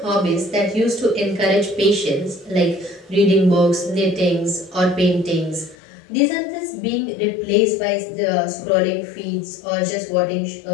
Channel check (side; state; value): right; drops out; at 5.8 s